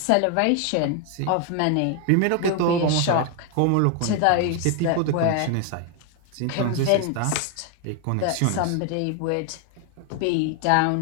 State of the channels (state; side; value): different; both; correlation 0.01